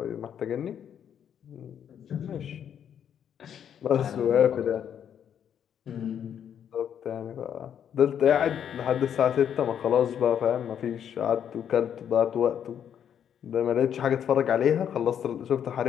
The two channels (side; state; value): right; quieter; 8.9 dB